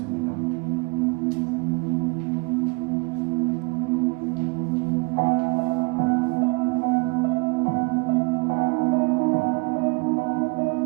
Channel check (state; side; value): quieter; left; 30.1 dB